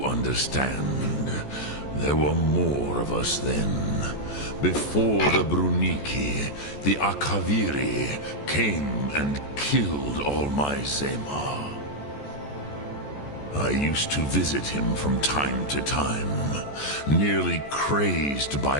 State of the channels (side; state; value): right; late; 14 ms